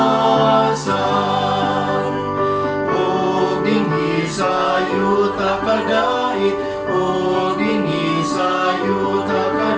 O dinhi sayo takadait, o dinhi sayo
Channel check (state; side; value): identical; both; correlation 1.00